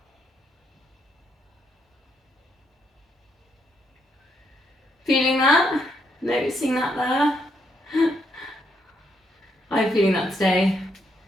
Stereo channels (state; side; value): normal; both; correlation 0.76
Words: Feeling that? Noticing that there? I'm feeling that today.